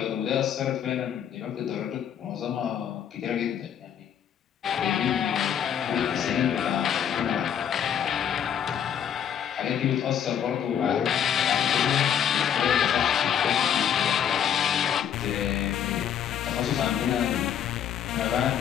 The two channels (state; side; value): quieter; right; 9.0 dB